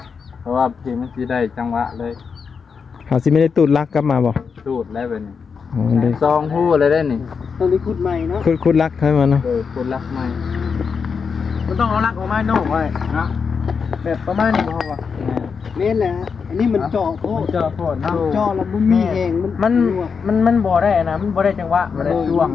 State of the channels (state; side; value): quieter; right; 5.8 dB